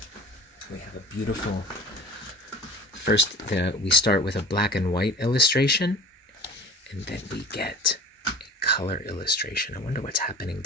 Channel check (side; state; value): both; normal; correlation 0.40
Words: We have a beautiful... First, we start with a black and white illustration, and then we get a color illustration. I wonder what's happening